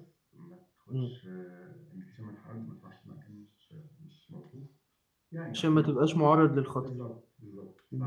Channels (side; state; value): both; identical; correlation 1.00